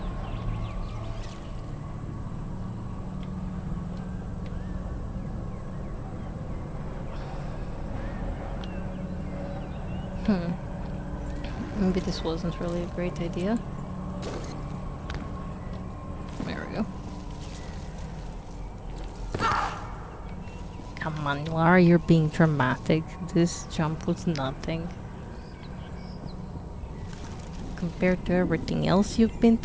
Maybe this wasn't really a great idea. There we go. Come on, Lara, you're being dramatic. This jump was nothing compared to everything else you've been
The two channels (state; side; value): identical; both; correlation 1.00